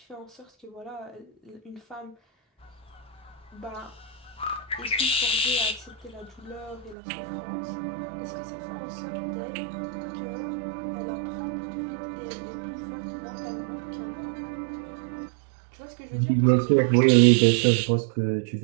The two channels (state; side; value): drops out; left; at 7.0 s